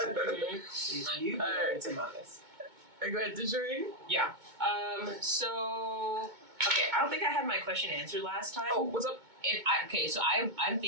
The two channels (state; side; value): late; left; 2.2 ms